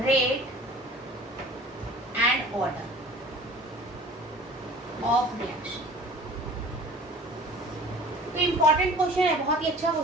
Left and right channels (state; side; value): normal; both; correlation 0.45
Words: rate and order of reaction. तो इंपॉर्टेंट क्वेश्चन है, बहुत ही अच्छा